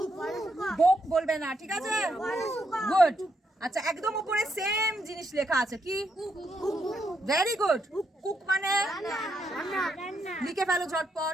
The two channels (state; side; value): normal; both; correlation 0.78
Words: বুক বলবে না, ঠিক আছে? গুড। আচ্ছা, একদম উপরে সেম জিনিস লেখা আছে, কি? Very good. কুক মানে লিখে ফেলো